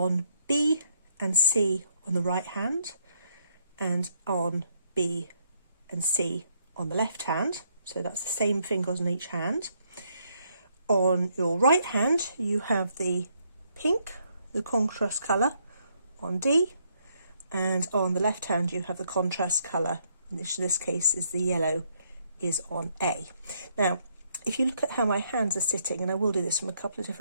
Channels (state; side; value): inverted; both; correlation -0.72